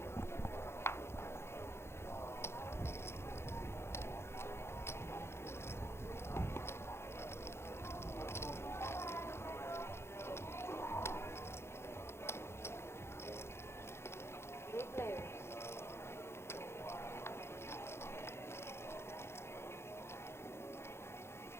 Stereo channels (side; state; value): right; late; 0.12 ms